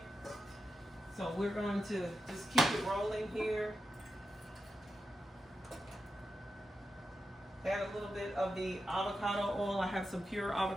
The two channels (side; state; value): both; normal; correlation 0.90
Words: So we're going to just keep it rolling here. Add a little bit of the avocado oil. I have some pure